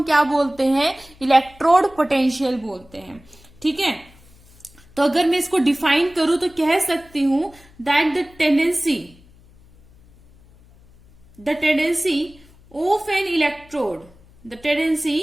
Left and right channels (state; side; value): noise; left; hum, 27 dB below the sound